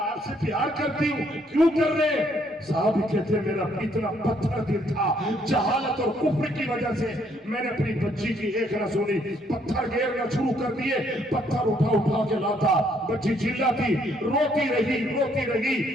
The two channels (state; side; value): normal; both; correlation 0.68